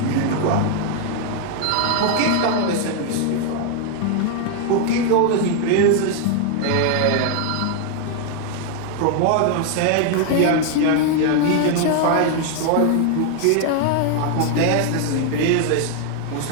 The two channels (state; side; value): different; both; correlation 0.00